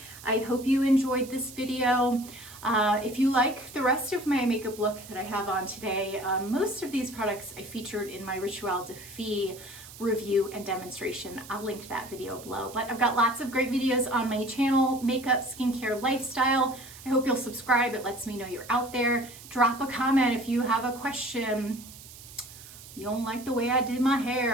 I hope you enjoyed this video. If you like the rest of my makeup look that I have on today, most of these products I featured in my Ritual de Fille review and demonstration. I'll link that video below. But I've got lots of great videos on my channel, makeup, skincare, lifestyle. I hope you'll subscribe. It lets me know you're out there. Drop a comment if you have a question. You don't like the way I did my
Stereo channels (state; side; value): noise; right; hiss, 17 dB below the sound